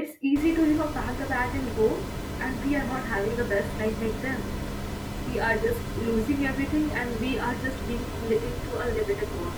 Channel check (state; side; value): identical; both; correlation 1.00